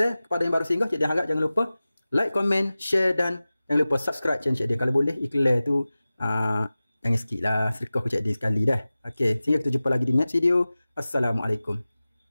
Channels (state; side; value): inverted; both; correlation -0.97